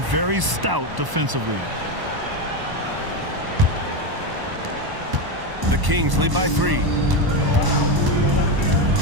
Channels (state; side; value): late; left; 1.0 ms